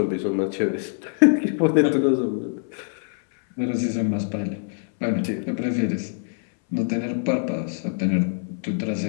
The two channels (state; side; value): silent; right; 63 dB below the other